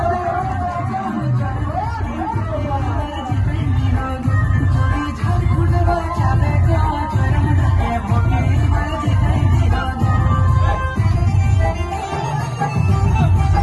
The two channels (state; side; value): identical; both; correlation 1.00